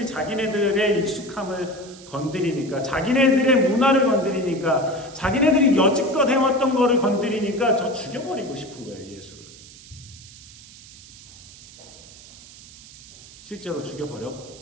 자기네들의 익숙함을 건드리니까 자기네들의 문화를 건드리니까 자기네들이 여지껏 해왔던 거를 건드리니까 저 죽여버리고 싶은 거예요. 예수를. 실제로 죽여버렸고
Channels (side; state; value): right; noise; hiss, 19 dB below the sound